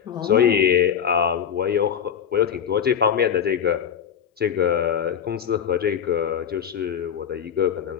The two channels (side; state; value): right; quieter; 8.3 dB